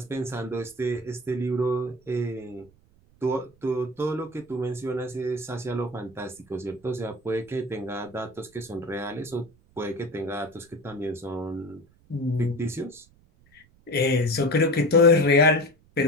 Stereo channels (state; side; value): noise; right; rumble, 30 dB below the sound